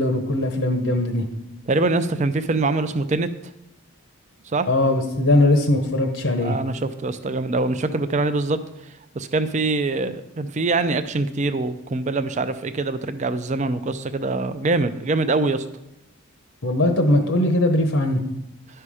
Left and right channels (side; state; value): both; normal; correlation 0.42